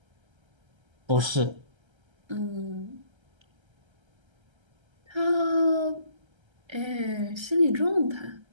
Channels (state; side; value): late; left; 1.3 ms